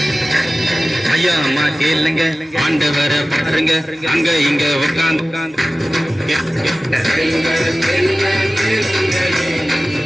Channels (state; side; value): normal; both; correlation 0.97